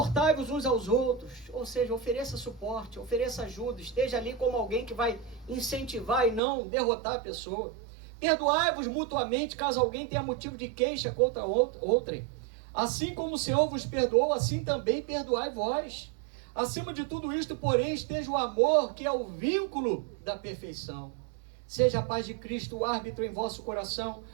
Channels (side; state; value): left; drops out; at 6.4 s